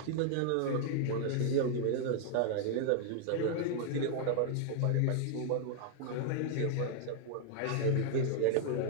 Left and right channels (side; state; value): both; different; correlation 0.00